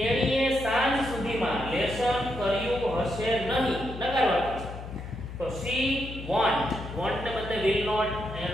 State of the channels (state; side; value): noise; left; hum, 10 dB below the sound